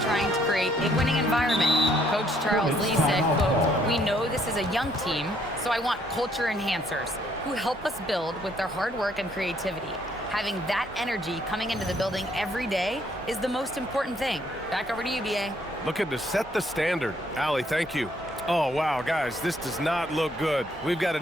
trying to create a winning environment. Coach Charles Lee said, quote, "We know this is a young team, so I want culture enhancers who help us build with their hard work and creativity. Having that energy coming into the building every day is the most important thing." Back over to you, BA. Looking to set the standard. Allie, thank you. Oh, wow, guys, this does not look good. We've got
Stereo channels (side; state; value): both; normal; correlation 0.67